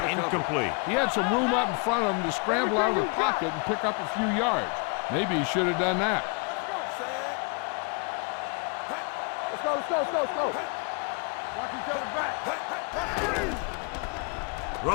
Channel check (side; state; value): right; quieter; 35.4 dB